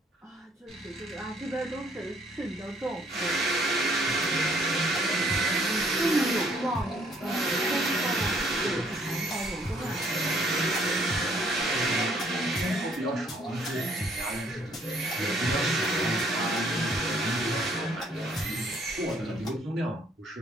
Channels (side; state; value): both; normal; correlation 0.64